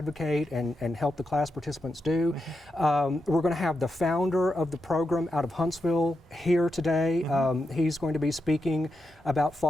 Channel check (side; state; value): both; normal; correlation 0.86